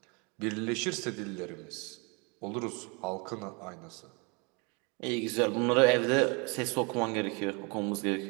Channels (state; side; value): quieter; left; 31.2 dB